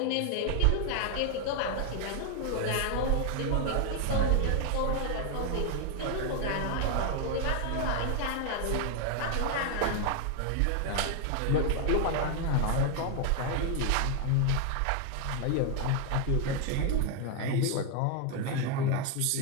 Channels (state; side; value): different; both; correlation 0.01